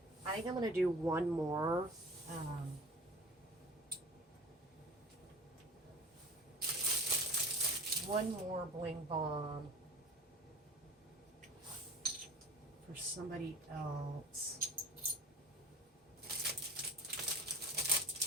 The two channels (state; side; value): normal; both; correlation 0.38